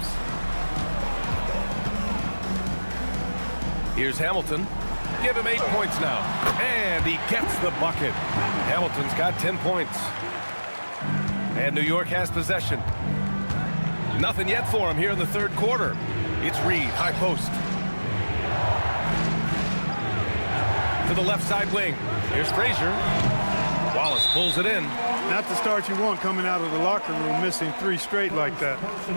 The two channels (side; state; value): both; inverted; correlation -1.00